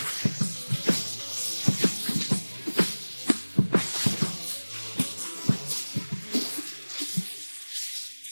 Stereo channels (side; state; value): both; inverted; correlation -1.00